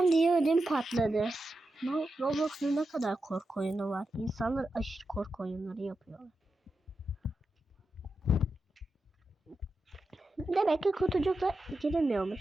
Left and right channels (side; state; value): both; normal; correlation 0.89